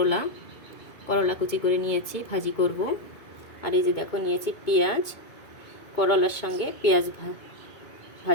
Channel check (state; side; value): late; right; 2.2 ms